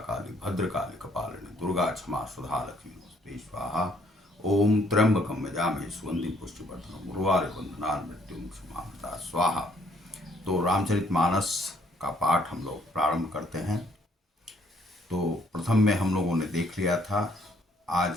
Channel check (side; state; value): both; normal; correlation 0.65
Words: काली भद्रकाली कपालिनी दुर्गा क्षमा सुधा लक्ष्मी नमस्ते स्वाहा। ओम त्र्यंबकम यजामहे सुगंधिं पुष्टिवर्धनम् उर्वारुकं बंधनान् मृत्युमुक्षमामृता स्वाहा। तो रामचरितमानस का पाठ हम लोग प्रारंभ करते हैं। तो प्रथम में हम लोगों ने देख लिया था। आज